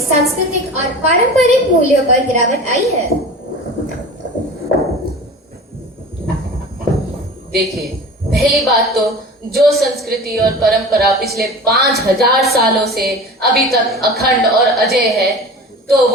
और पारंपरिक मूल्यों पर गिरावट आई है? देखिए, पहली बात तो जो संस्कृति और परंपरा पिछले 5000 सालों से अभी तक अखंड और अजय है, तो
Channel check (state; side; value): normal; both; correlation 0.36